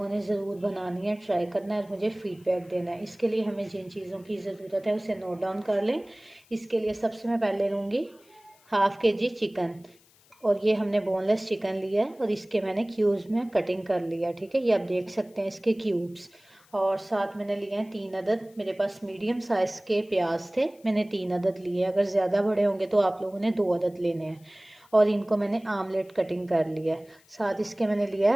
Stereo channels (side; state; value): left; noise; hiss, 30 dB below the sound